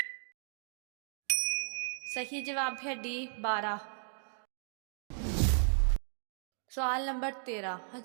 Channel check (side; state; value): left; silent; digital silence